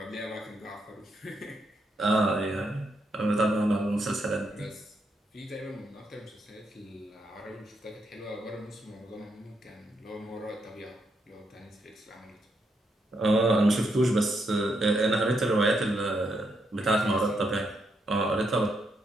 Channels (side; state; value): both; normal; correlation 0.79